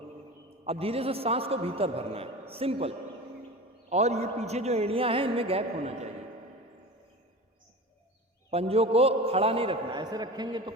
अब धीरे से सांस को भीतर भरना है, सिंपल। और ये पीछे जो एड़ियाँ हैं इनमें गैप होना चाहिए। पंजों को खड़ा नहीं रखना, ऐसे रखेंगे तो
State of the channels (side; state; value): both; normal; correlation 0.32